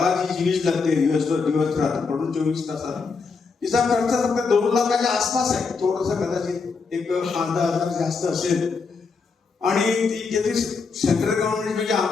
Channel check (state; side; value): quieter; right; 4.8 dB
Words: जी वीज लागते दिवस रात्र पडून 24 तासात तिचा खर्च फक्त 2 लाखाच्या आसपास आहे. थोडंसं कदाचित 1,000 जास्त असेल आणि ती जे सेंट्रल गव्हर्नमेंट म्हणजे